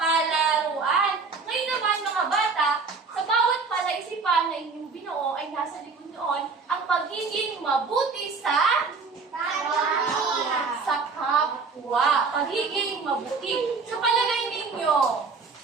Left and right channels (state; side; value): quieter; left; 4.6 dB